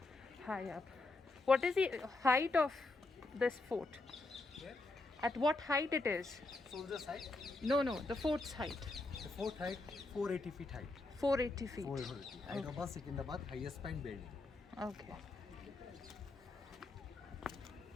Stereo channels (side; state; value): right; quieter; 3.2 dB